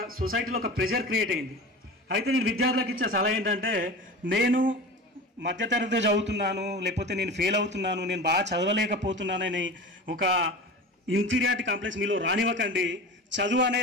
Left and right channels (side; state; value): both; normal; correlation 0.32